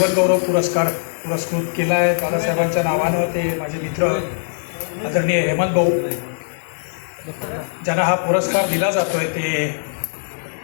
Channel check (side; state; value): right; silent; digital silence